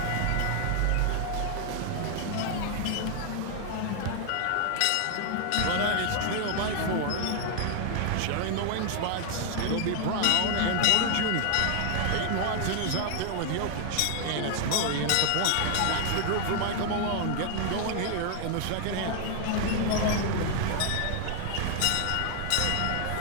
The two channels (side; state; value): both; different; correlation 0.00